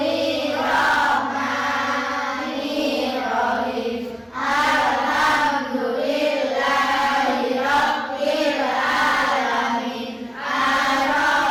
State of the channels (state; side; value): identical; both; correlation 1.00